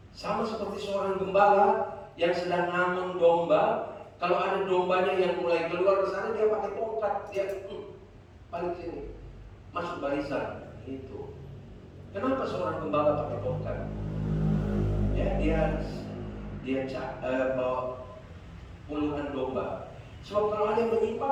Sama seperti seorang gembala yang sedang ngamen domba. Kalau ada dombanya yang mulai keluar ke sana, dia pakai tongkat, dia balik sini, masuk barisan. Itu. Kenapa seorang gembala pakai tongkat? Ya, dia bawa puluhan domba. Sebab kalau ada yang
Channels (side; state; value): both; identical; correlation 1.00